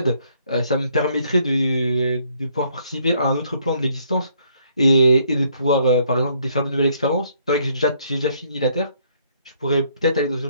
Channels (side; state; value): both; inverted; correlation -0.67